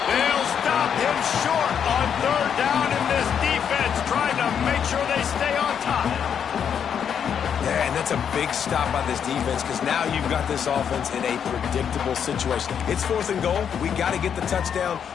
They'll stop him short on third down, and this defense trying to make sure they stay on top. Yeah, and that's a big stop by this defense because now you've got this offense in a predictable situation. It's fourth and goal. We got to get the touchdown,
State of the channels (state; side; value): quieter; right; 7.9 dB